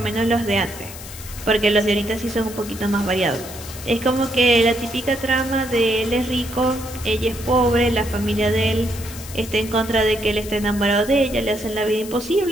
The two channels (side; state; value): left; noise; hiss, 14 dB below the sound